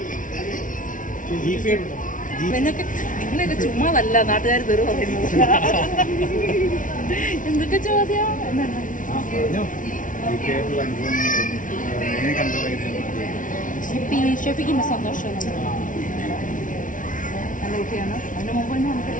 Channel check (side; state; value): right; late; 0.38 ms